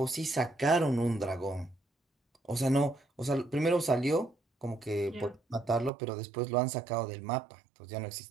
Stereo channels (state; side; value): drops out; left; at 5.9 s